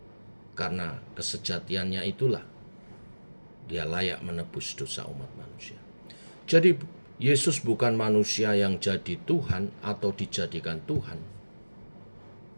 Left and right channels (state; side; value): inverted; both; correlation -1.00